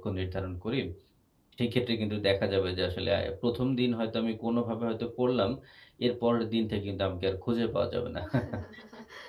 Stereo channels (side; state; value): both; identical; correlation 1.00